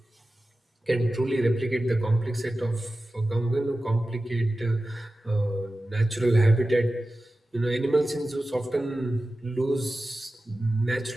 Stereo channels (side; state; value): both; normal; correlation 0.94